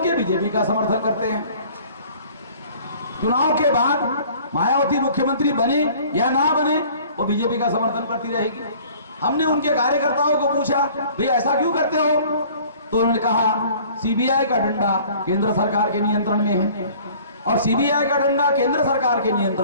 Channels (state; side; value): inverted; both; correlation -0.51